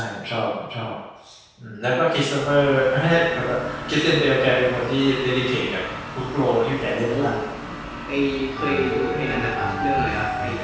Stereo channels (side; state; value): both; identical; correlation 1.00